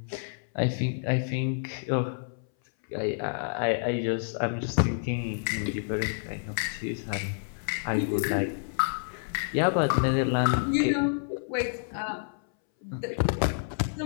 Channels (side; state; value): right; silent; 59 dB below the other